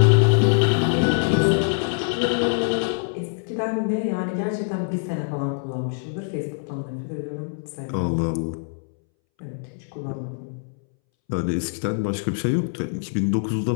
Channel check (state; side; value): silent; right; 63 dB below the other